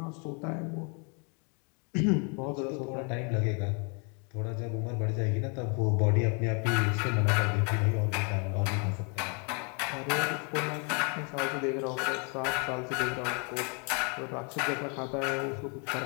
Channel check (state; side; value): quieter; right; 35.8 dB